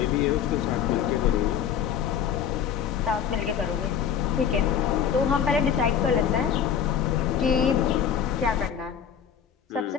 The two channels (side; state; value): right; quieter; 8.2 dB